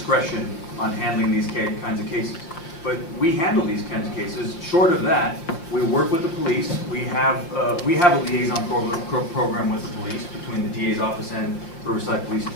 on handling these kinds of cases. But we handle these kinds of cases. Short of that, we work with the police. We have a liaison program with the police between the DA's office and Riverside Police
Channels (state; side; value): late; right; 5.8 ms